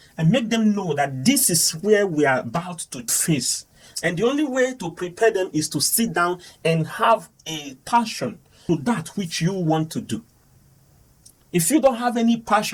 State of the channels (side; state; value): both; identical; correlation 1.00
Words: and make them know that this is where we are about to face. And the only way to prepare them is to sit down and have a passion to that which you want to do. If you don't have any